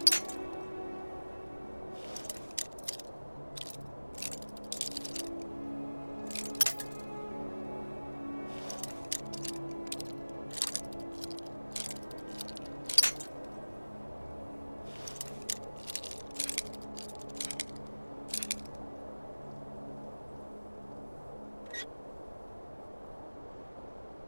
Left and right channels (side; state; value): both; inverted; correlation -1.00